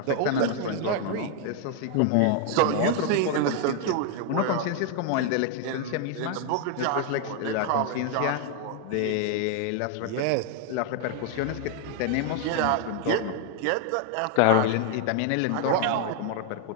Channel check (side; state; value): both; different; correlation 0.00